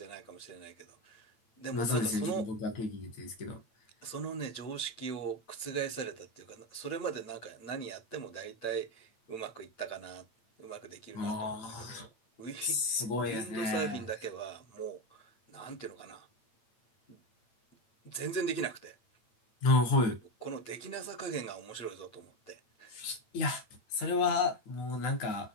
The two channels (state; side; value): late; right; 8.9 ms